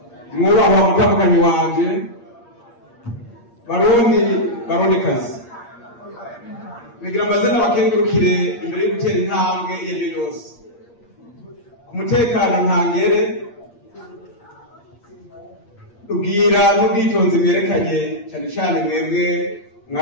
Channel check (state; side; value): late; right; 8.5 ms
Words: mwubahwa mutandukanye wanje barondikazi bigira amazina bakengurukire imbere yo gutera intambwe iyo ari yo yose ku mutekano ntangere ubwira n'ubwitonzi bwerekanye cyane cyane mwebwe